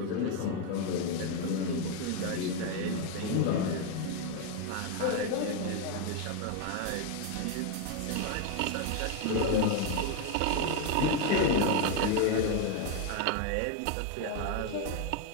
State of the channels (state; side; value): different; both; correlation 0.01